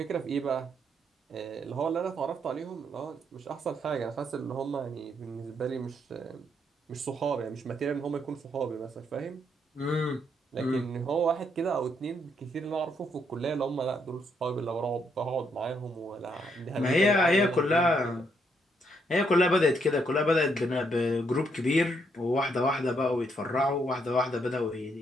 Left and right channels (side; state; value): both; normal; correlation 0.74